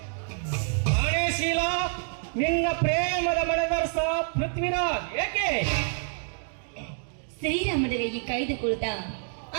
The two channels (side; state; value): left; silent; 59 dB below the other